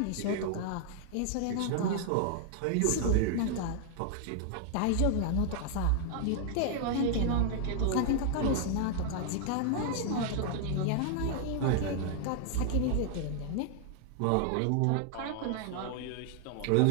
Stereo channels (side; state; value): both; different; correlation 0.00